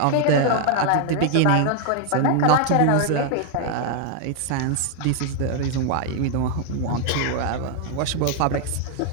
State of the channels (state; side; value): different; both; correlation 0.00